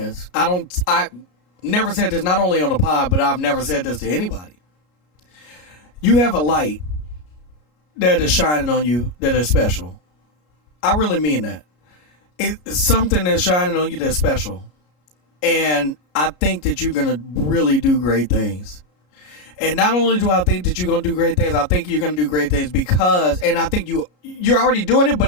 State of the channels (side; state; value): right; late; 33 ms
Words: I never said this not only on the pod, but I've never said this to anybody. You have a light that is shining on you that is special. I really mean that. It's something that's shining on you that's special. And I think that you're going to really do great things. And not only do I think that you're gonna do great things, I think you're gonna do great things because, and I think you're already doing it,